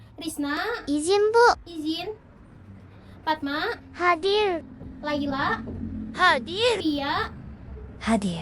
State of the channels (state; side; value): identical; both; correlation 1.00